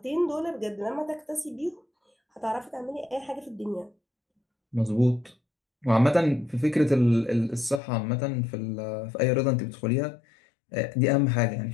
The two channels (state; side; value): drops out; right; at 7.8 s